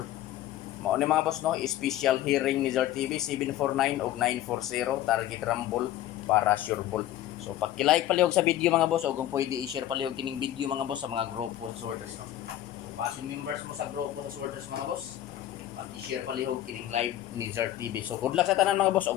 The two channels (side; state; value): right; quieter; 13.0 dB